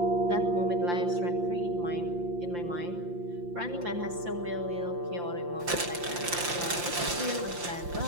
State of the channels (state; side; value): late; left; 5.7 ms